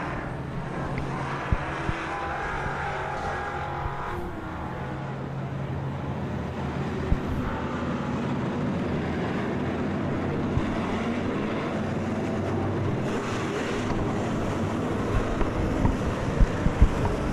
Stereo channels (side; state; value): both; identical; correlation 1.00